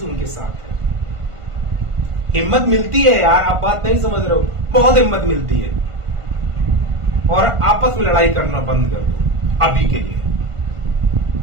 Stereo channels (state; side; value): late; left; 1.5 ms